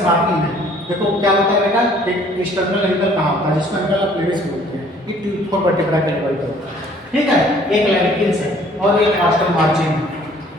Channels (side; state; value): both; normal; correlation 0.57